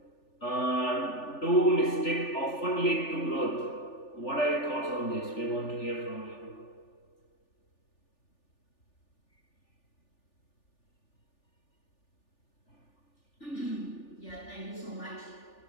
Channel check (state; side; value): late; right; 3.4 ms